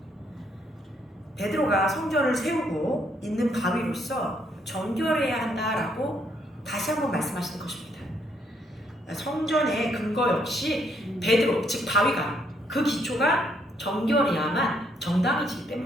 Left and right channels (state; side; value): normal; both; correlation 0.71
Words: 베드로가 성전을 세우고 있는 바위로서 정결해야 한다라고 다시 한번 말씀하시는 것입니다. 성전의 근거 역시 베드로, 즉 바위가, 그 기초가 정결해야만 정당해지기